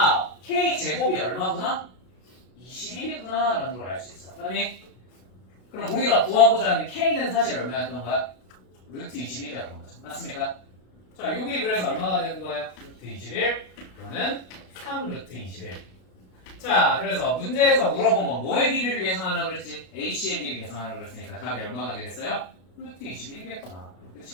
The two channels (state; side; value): late; right; 32 ms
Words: k 제곱이 얼마구나? 21이구나 라는 걸 알 수 있어. 그다음에 그럼 우리가 구하고자 하는 k는 사실 얼마였던 거야? 루트 21이었던 거죠. 맞습니까? 자, 여기 그래서 얼마가 되는 거예요? 루트 21 또는 3 루트 21. 자, 그래서 문제에서 물어본 건 뭐의 길이를 계산하라고 그랬지? AC의 길이 계산하라고 그랬으니까 답이 얼마가 되겠어요? 루트 21이겠구나.